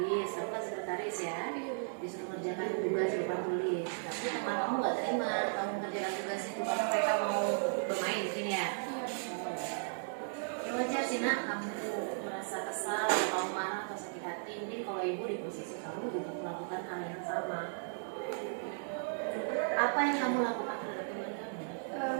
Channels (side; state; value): left; silent; digital silence